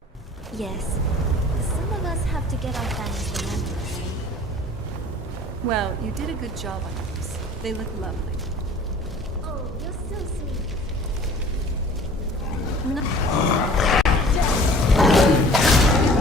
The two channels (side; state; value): both; normal; correlation 0.47